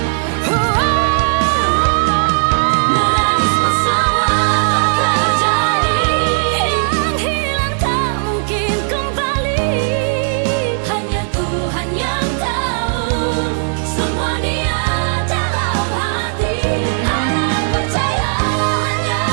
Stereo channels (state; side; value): silent; left; 69 dB below the other